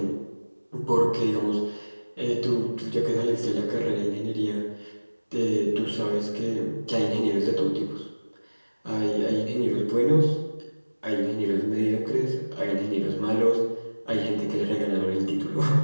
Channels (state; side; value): inverted; both; correlation -1.00